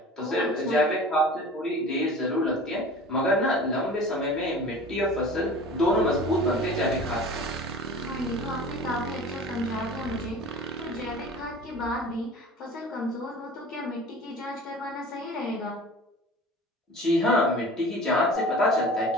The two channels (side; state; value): both; normal; correlation 0.40